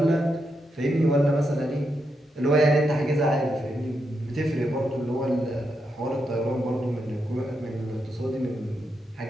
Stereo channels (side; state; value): both; normal; correlation 0.83